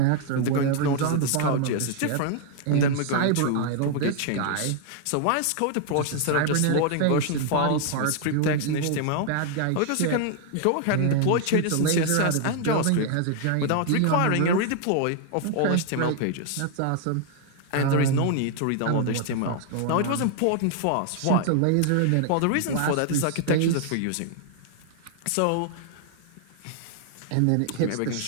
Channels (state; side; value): different; both; correlation 0.00